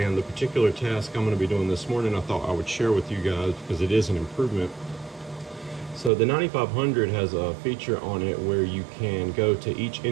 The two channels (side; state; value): left; drops out; at 6.1 s